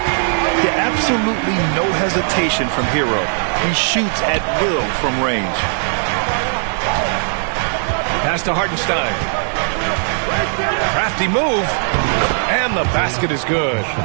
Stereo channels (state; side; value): silent; left; 56 dB below the other